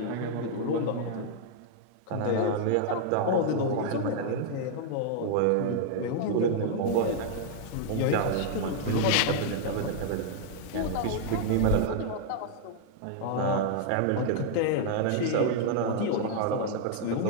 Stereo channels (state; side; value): different; both; correlation -0.01